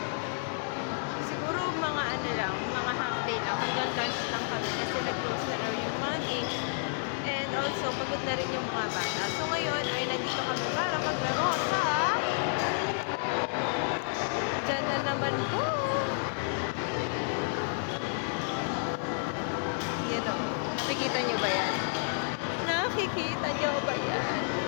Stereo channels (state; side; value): silent; right; 57 dB below the other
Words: Siguro mga ano lang, mga half day lang, hanggang lunch lang kami kasi nag-close na raw yung money. And also, pagod na rin yung mga bata. So ngayon ay nandito kami para maglaro sa dyan na naman po! Yan o, nakikita nyo ba yan? Nakikita nyo ba yan?